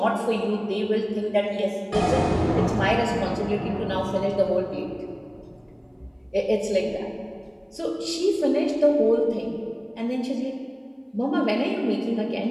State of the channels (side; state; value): both; identical; correlation 1.00